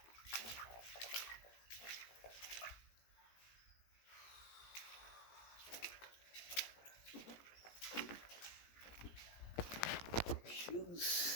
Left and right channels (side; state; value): right; late; 17 ms